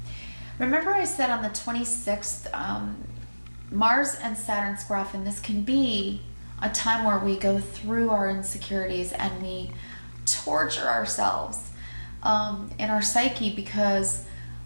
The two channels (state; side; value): inverted; both; correlation -1.00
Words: Remember I said on the 26th, Mars and Saturn square off, and this can be a time where we go through our insecurities and we torture ourselves in our psyche because